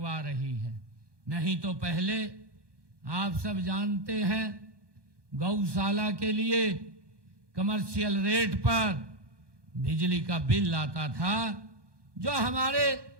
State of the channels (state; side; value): late; left; 1.2 ms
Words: रही है। नहीं तो पहले आप सब जानते हैं गौशाला के लिए कमर्शियल रेट पर बिजली का बिल आता था। जो हमारे